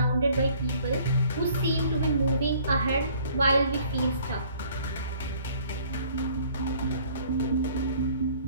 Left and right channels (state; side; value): inverted; both; correlation -0.57